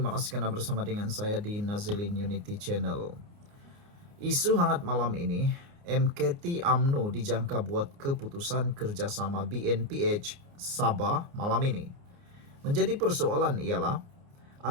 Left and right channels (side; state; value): left; late; 29 ms